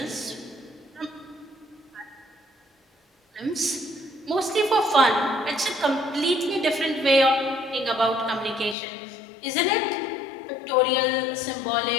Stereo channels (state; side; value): drops out; right; at 8.8 s